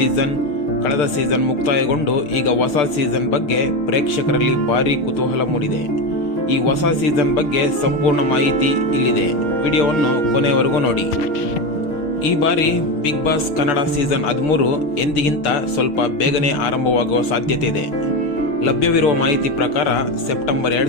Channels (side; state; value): right; late; 6.5 ms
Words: ಕಳೆದ ಸೀಸನ್ ಮುಕ್ತಾಯಗೊಂಡು ಈಗ ಹೊಸ ಸೀಸನ್ ಬಗ್ಗೆ ಪ್ರೇಕ್ಷಕರಲ್ಲಿ ಭಾರೀ ಕುತೂಹಲ ಮೂಡಿದೆ. ಈ ಹೊಸ ಸೀಸನ್ ಬಗ್ಗೆ ಸಂಪೂರ್ಣ ಮಾಹಿತಿ ಇಲ್ಲಿದೆ. ವಿಡಿಯೋವನ್ನು ಕೊನೆಯವರೆಗೂ ನೋಡಿ. ಈ ಬಾರಿ ಬಿಗ್ ಬಾಸ್ ಕನ್ನಡ ಸೀಸನ್ 13 ಎಂದಿಗಿಂತ ಸ್ವಲ್ಪ ಬೇಗನೆ ಆರಂಭವಾಗುವ ಸಾಧ್ಯತೆ ಇದೆ. ಲಭ್ಯವಿರುವ ಮಾಹಿತಿ ಪ್ರಕಾರ ಸೆಪ್ಟೆಂಬರ್